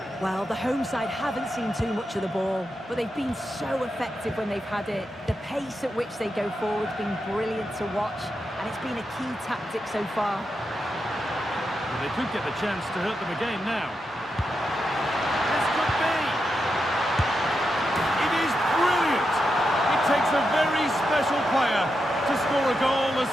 Well, the home side haven't seen too much of the ball, but they've been so effective when they've had it. The pace at which they go forward has been brilliant to watch, and it's been a key tactic so far. Well, they could get the chance to hurt them again now. This could be. It is brilliant. It takes a very special player to score a goal as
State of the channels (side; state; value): both; normal; correlation 0.86